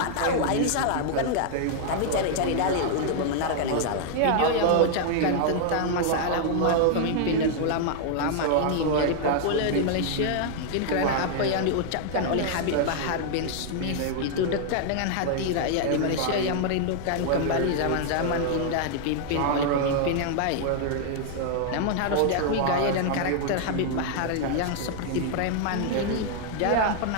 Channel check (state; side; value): different; both; correlation -0.01